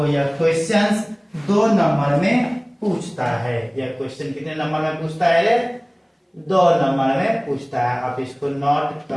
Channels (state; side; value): identical; both; correlation 1.00